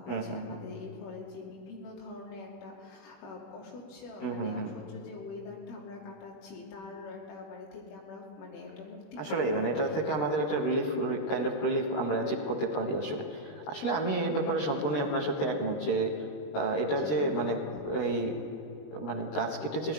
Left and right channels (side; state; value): right; late; 20 ms